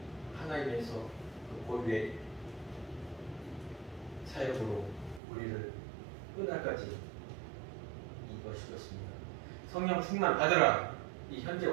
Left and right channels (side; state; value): left; drops out; at 5.2 s